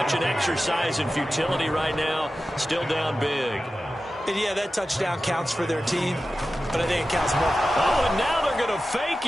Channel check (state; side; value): normal; both; correlation 0.94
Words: an exercise in futility right now. Still down big. And yeah, that touchdown counts for their team, but I think it counts more. Oh, and now they're going to